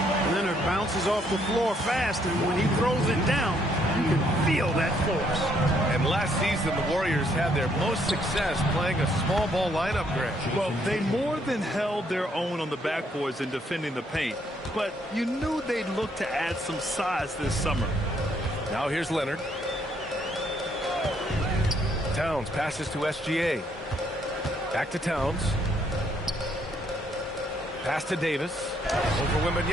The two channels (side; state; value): both; normal; correlation 0.70